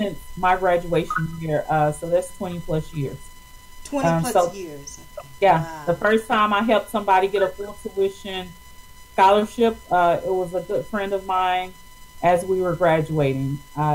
my graduation year, so that's 20 plus years. 20 plus years. Okay. Yeah, wow. The first time I helped somebody get a full tuition scholarship, it was a good friend of mine. As we were graduating,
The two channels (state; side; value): identical; both; correlation 1.00